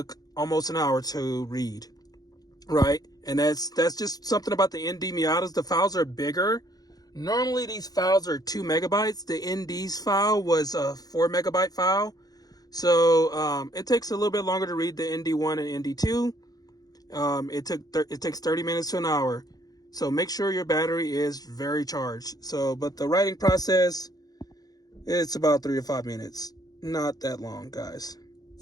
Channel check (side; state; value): right; late; 0.19 ms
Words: almost an hour to read, right? And that's just something about the ND Miatas. The files are bigger. Normally these files are 2 megabytes. The ND's file was a 4 megabyte file. So it takes a little bit longer to read the ND1 and ND2. It takes 30 minutes to an hour. So make sure your battery is very charged. But the writing process, it's about 3 to 5 minutes. Not that long, guys.